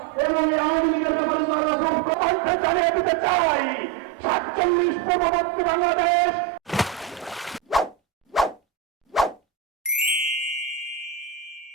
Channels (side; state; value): left; quieter; 9.1 dB